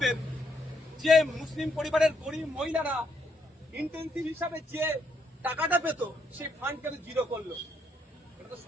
এর যে মুসলিম পরিবারের গরিব মহিলারা ইন্টেন্সিভ হিসাবে যে টাকাটা পেত, সেই ফান্ড কেন জিরো করলো? এটা তো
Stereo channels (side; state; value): both; normal; correlation 0.75